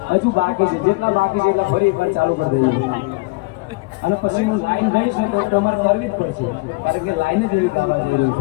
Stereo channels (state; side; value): quieter; right; 25.4 dB